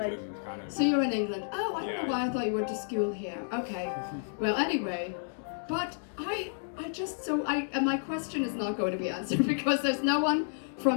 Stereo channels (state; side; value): silent; right; digital silence